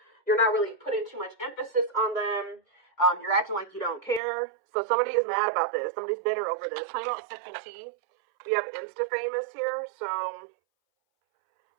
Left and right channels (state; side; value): drops out; left; at 4.2 s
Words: You're not really putting too much emphasis on them. You're acting like you don't care. So somebody is mad about this. Somebody's bitter over this. Talking about sipping tea. We have Insta-famous here. So